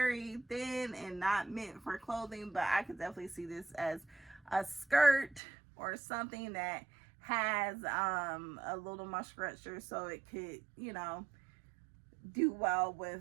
thin and not meant for clothing, but I could definitely see this as a skirt or something that has a little more structure, so it could, you know, do well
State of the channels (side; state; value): left; drops out; at 5.4 s